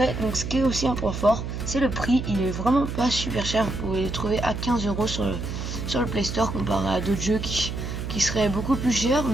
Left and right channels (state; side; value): noise; right; hum, 5 dB below the sound